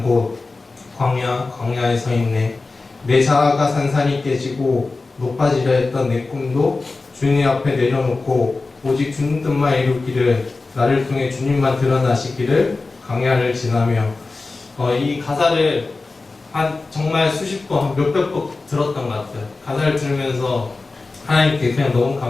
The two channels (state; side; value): quieter; right; 3.6 dB